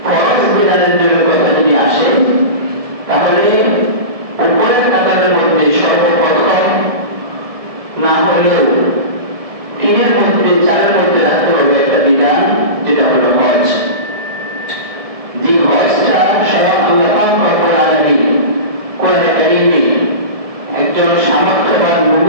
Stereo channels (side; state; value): left; late; 1.7 ms